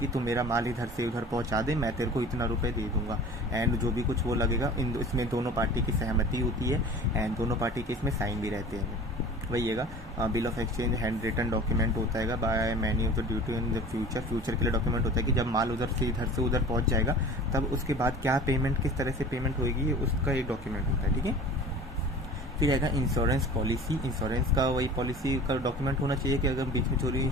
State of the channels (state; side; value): normal; both; correlation 0.40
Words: तुम मेरा माल इधर से उधर पहुंचा दे, मैं तेरे को इतना रुपए दे दूंगा, एंड जो भी कुछ वो लगेगा इसमें दोनों पार्टी की सहमति होती है, एंड दोनों पार्टी के इसमें साइन भी रहते हैं, वही है bill of exchange handwritten document होता है by many of the duty in the future के लिए डॉक्यूमेंट होता है कि जब माल उधर से इधर से उधर पहुंच जाएगा तब उसके बाद क्या पेमेंट, किस तरह से पेमेंट होगी, उसका एक डॉक्यूमेंट होता है, ठीक है। फिर आएगा इंश्योरेंस पॉलिसी, इंश्योरेंस का वही पॉलिसी का डॉक्यूमेंट होना चाहिए कि अगर बीच में चोरी